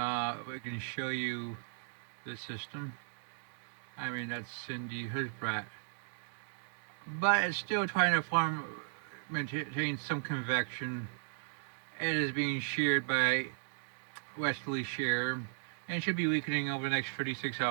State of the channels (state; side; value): silent; left; digital silence